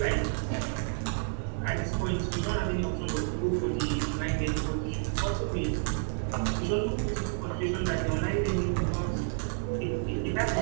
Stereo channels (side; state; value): left; silent; 58 dB below the other